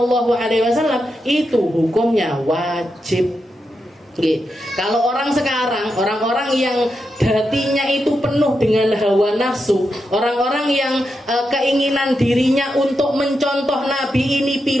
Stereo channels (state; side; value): normal; both; correlation 0.86